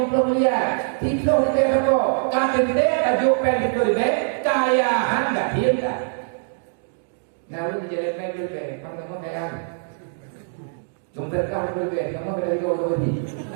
miliar, tiba dia apa? Kata dia tajuk pen itu dia kaya anda hilang. Nah, lu jadi pen itu dia, kamu kaya. Jumlah kau berbeda, kamu berada di bawah ini.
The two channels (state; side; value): silent; left; digital silence